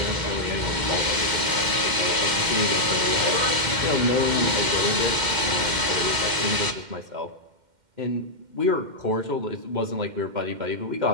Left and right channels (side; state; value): left; late; 2.1 ms